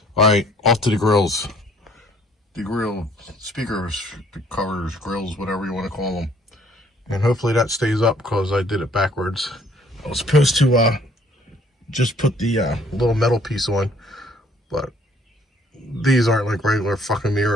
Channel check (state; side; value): normal; both; correlation 0.61